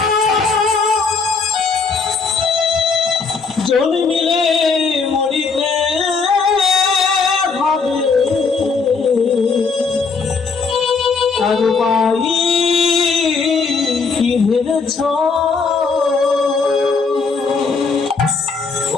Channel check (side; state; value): right; quieter; 4.8 dB